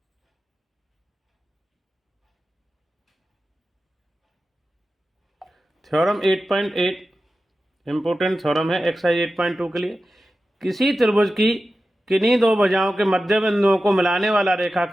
थ्योरम 8.8 इंपोर्टेंट थ्योरम है एक्सरसाइज 8.2 के लिए। किसी त्रिभुज की किन्हीं दो भुजाओं के मध्य बिंदुओं को मिलाने वाला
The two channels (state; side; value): normal; both; correlation 0.93